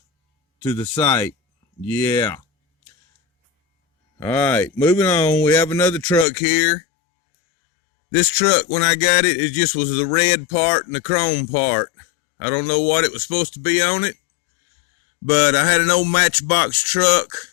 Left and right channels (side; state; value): right; drops out; at 6.2 s